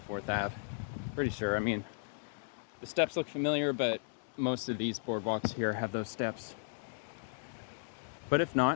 Ave. Pretty sure. I mean, the steps look familiar, but most of these boardwalks here have those steps. But if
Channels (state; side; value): silent; right; digital silence